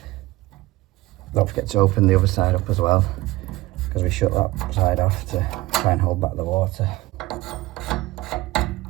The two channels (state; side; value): quieter; left; 18.9 dB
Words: Don't forget to open the other side up as well, because we shut that side off to try and hold back the water.